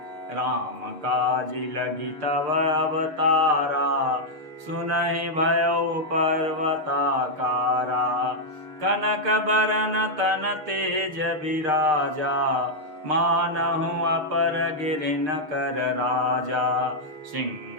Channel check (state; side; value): late; left; 6.6 ms